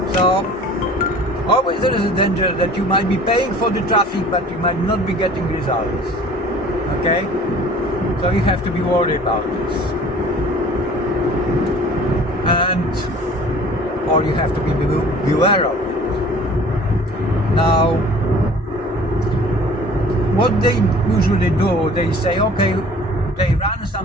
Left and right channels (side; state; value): both; normal; correlation 0.48